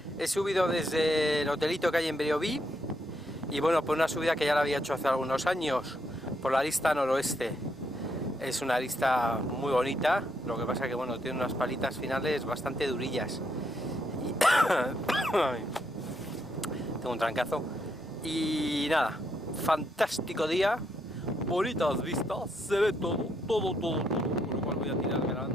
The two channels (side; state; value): both; normal; correlation 0.77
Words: He subido desde el hotelito que hay en Beoví y bueno, por una subida que ya la había hecho hace algunos años, por la arista noroeste. Es una arista muy bonita, lo que pasa que bueno, tiene unas palitas finales bastante durillas. Y... tengo un trancazo. Y nada, fantástico día, bonitas vistas, se ve todo, por lo cual voy a tirar